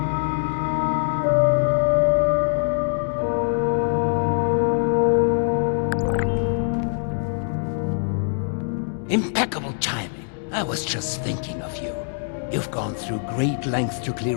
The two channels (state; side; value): silent; right; digital silence